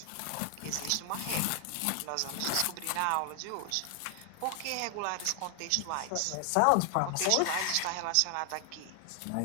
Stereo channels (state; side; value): different; both; correlation 0.00